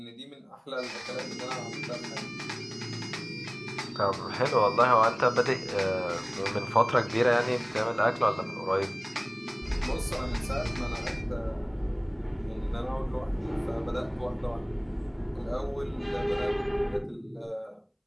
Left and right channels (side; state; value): both; identical; correlation 1.00